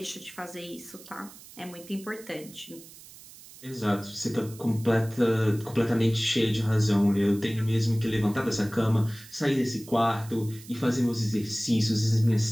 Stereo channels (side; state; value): right; noise; hiss, 19 dB below the sound